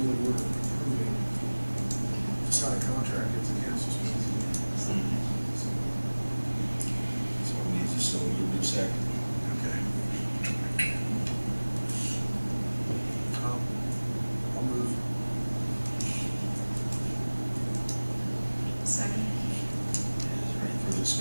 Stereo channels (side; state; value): both; inverted; correlation -1.00